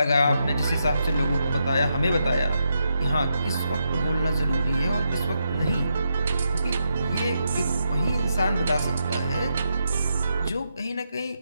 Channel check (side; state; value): both; inverted; correlation -0.83